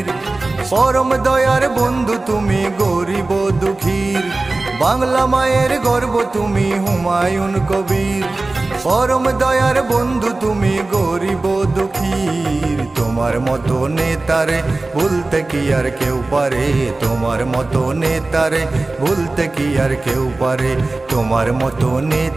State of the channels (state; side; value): quieter; left; 3.2 dB